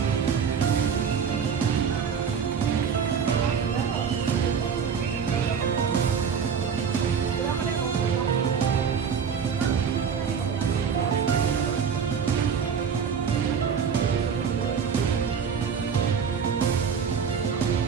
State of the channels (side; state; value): left; quieter; 6.8 dB